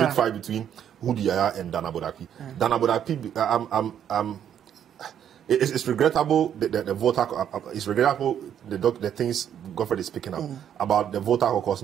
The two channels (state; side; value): quieter; left; 9.4 dB